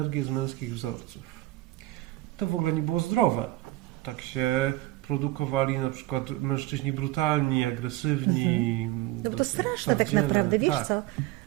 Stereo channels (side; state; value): left; quieter; 17.4 dB